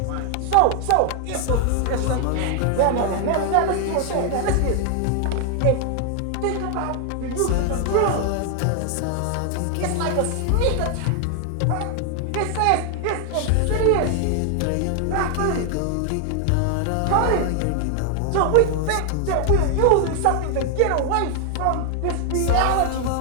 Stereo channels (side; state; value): both; different; correlation 0.00